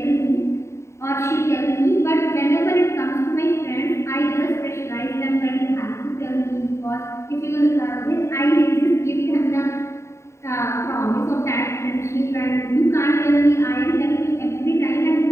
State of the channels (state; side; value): late; right; 0.14 ms